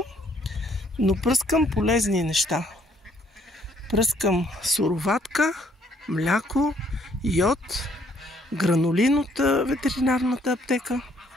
но пръскам полезни неща. Пръскам суроватка, мляко, йод, гранулин от ветеринарната аптека.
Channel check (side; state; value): both; normal; correlation 0.65